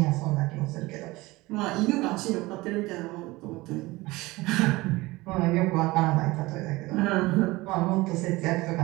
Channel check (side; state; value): left; quieter; 20.8 dB